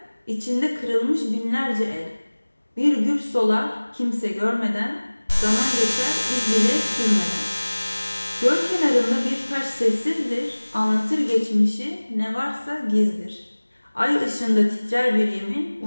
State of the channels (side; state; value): both; inverted; correlation -1.00